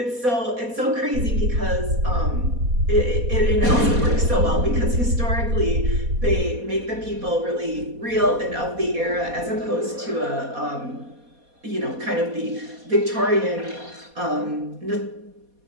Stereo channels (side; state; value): left; late; 4.2 ms